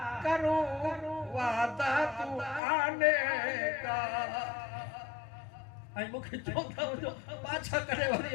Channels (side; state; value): right; drops out; at 2.6 s